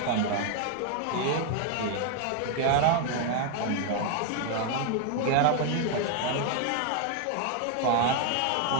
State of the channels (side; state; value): both; different; correlation 0.01